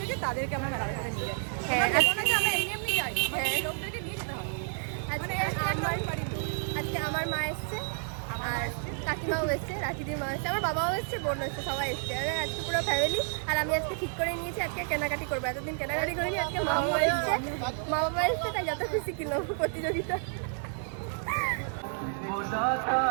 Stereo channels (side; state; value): left; silent; 58 dB below the other